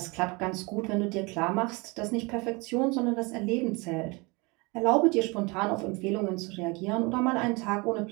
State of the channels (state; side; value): quieter; left; 27.2 dB